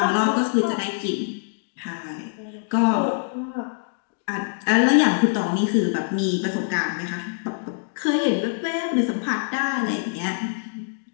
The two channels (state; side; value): silent; right; digital silence